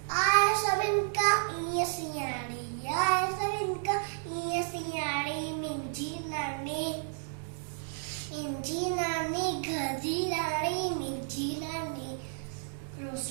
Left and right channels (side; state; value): left; silent; digital silence